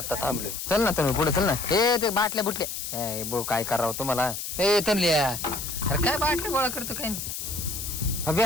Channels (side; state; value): left; noise; hiss, 6 dB below the sound